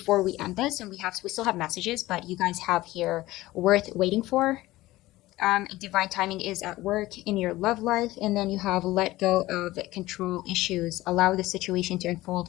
we end this, and we still have messages, but you guys have here worth waiting for. Divine timing is at work in your love life, and then you have let go of control issues, allow the situation to unfold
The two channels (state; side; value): quieter; right; 17.5 dB